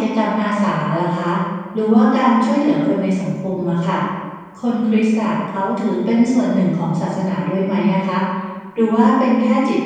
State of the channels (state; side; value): identical; both; correlation 1.00